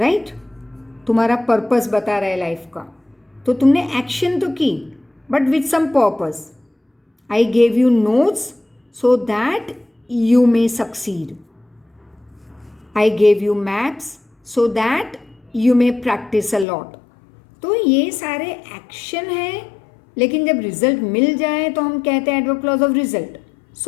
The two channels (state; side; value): drops out; right; at 16.7 s